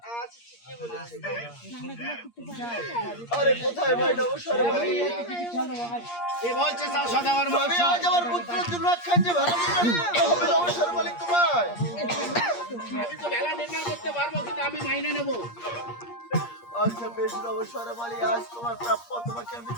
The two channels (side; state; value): right; late; 8.5 ms